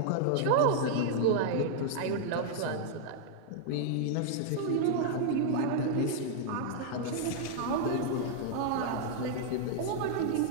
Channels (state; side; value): different; both; correlation -0.01